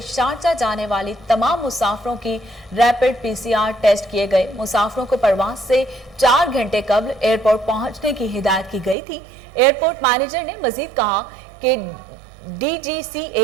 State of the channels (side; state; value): left; drops out; at 9.0 s